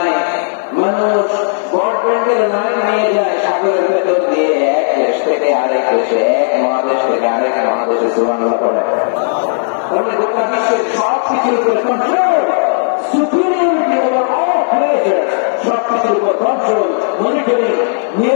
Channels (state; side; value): silent; right; digital silence